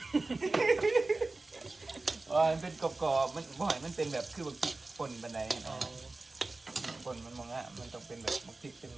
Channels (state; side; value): quieter; left; 3.3 dB